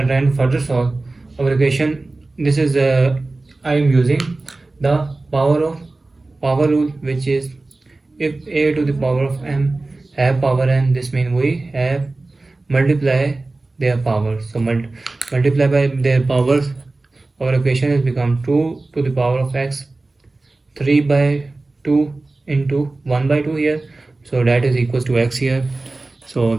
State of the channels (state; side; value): quieter; left; 3.2 dB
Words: to further solve our equation, this is I am using the power rule, which is if a to the power of m have power n, this means we have multiply their powers. So multiply by their powers, our equation is become 2 to the power of x 3 by 2 into 1 by 2 here, so that is equals to x here. So